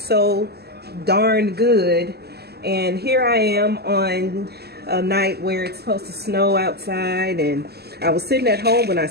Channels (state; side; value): late; left; 0.46 ms